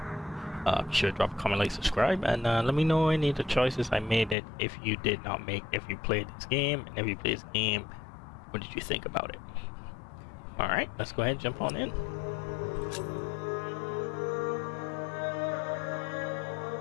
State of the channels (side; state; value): right; drops out; at 4.4 s